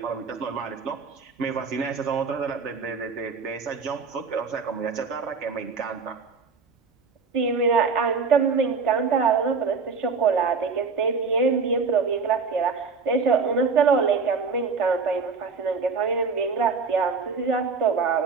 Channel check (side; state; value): left; quieter; 4.9 dB